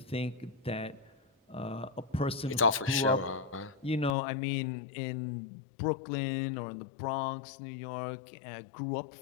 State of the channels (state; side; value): drops out; right; at 4.2 s